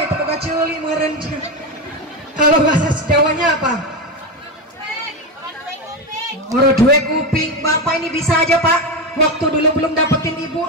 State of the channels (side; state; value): both; normal; correlation 0.15